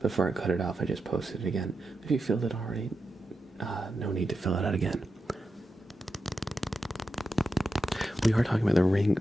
Before I cut it off, I just posted it again. If you filled it already, no need to fill it out again. We are talking about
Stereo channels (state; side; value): normal; both; correlation 0.88